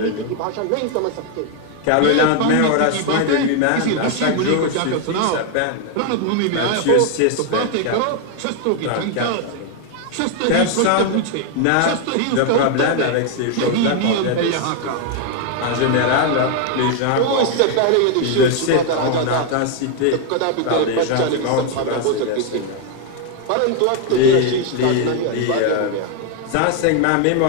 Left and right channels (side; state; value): both; different; correlation 0.01